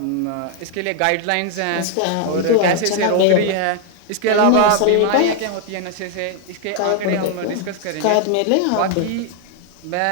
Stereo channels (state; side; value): different; both; correlation 0.00